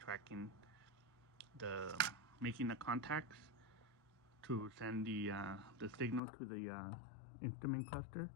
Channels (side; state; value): right; drops out; at 6.2 s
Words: the making the contacts to send the signal to the instrument cluster.